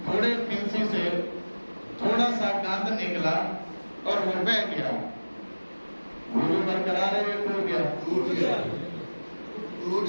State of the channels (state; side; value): inverted; both; correlation -1.00